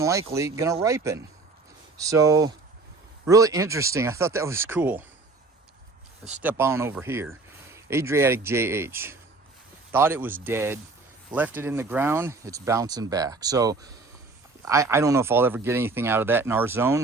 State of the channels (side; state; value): left; quieter; 3.6 dB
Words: likely gonna ripen. So really interesting. I thought that was cool. Let's step on over here. Adriatic JH. Thought it was dead, left it in the ground, it's bouncing back. So I don't know if I'll ever get anything out of that in our